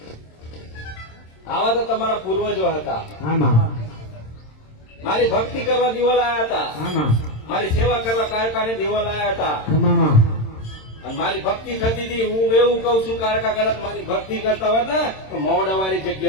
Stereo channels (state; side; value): late; right; 27 ms